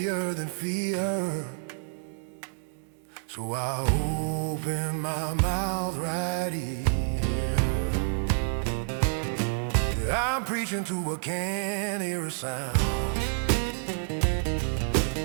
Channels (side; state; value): left; silent; digital silence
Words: than fear, so I opened my mouth right here. I'm preaching to a can't hear a sound,